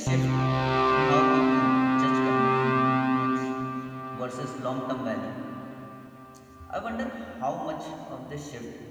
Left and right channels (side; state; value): both; identical; correlation 1.00